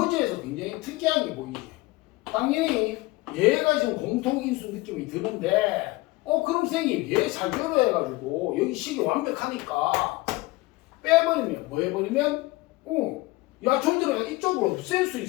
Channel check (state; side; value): quieter; right; 21.2 dB